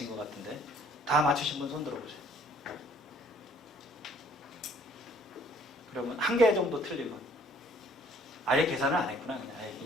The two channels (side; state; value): both; normal; correlation 0.58